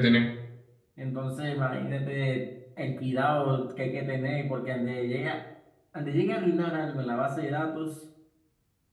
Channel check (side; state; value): both; identical; correlation 1.00